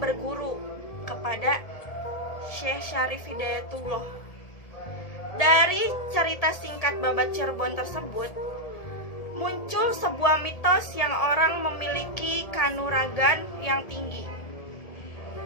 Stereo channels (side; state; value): right; late; 1.7 ms